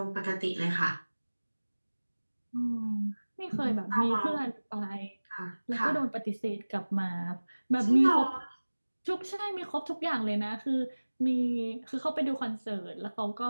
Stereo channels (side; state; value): both; inverted; correlation -1.00